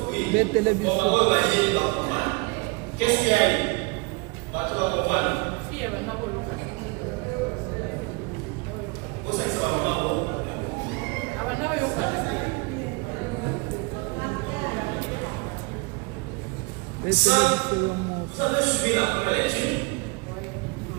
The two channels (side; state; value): left; quieter; 28.7 dB